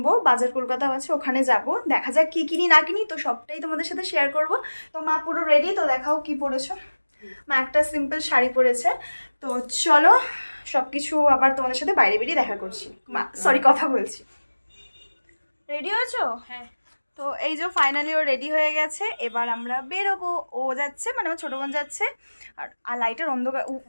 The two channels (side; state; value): both; inverted; correlation -1.00